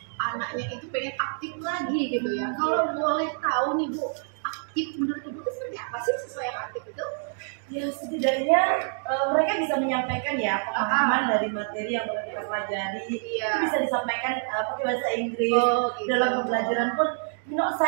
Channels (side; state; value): left; silent; 60 dB below the other